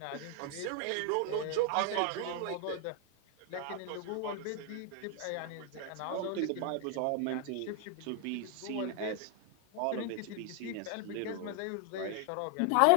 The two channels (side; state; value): both; different; correlation 0.00